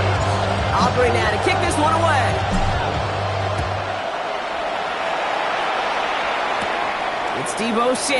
Aubrey now to kick this one away. It's Deebo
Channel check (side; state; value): both; identical; correlation 1.00